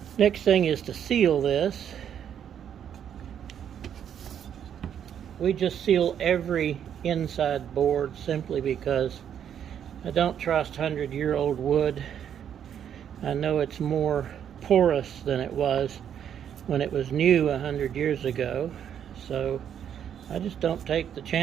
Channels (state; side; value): quieter; left; 9.0 dB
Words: next thing is to seal this. We just seal every inside board simply because I don't trust 100-year-old wood. I know it's more porous than it was when it was new 100 years ago, so I just don't take the